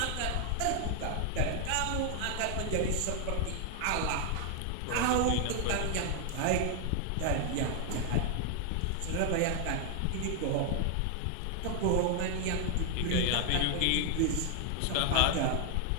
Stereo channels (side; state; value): both; different; correlation 0.00